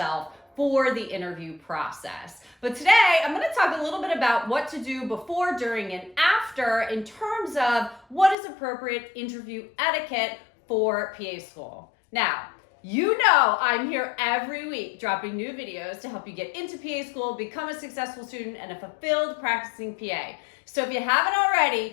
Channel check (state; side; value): drops out; right; at 8.3 s